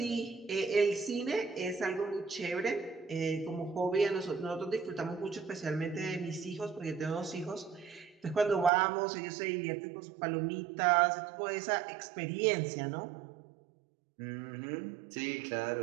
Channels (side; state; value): left; drops out; at 8.7 s